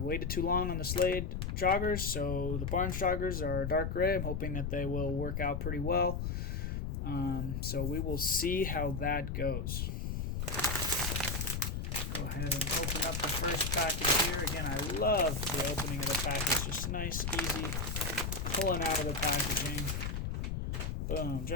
too long on the Slade joggers, so the Barnes joggers are dark gray. I'm hoping that they will work out pretty well, so we will see how that goes. Go ahead and open up the first package here. Again, I love the opening of the package, just nice, easy, pulling out of the packaging. Boom,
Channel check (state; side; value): noise; left; rumble, 2 dB below the sound